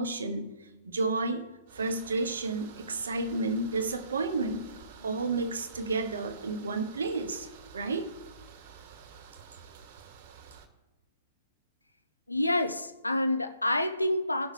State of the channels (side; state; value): both; inverted; correlation -0.66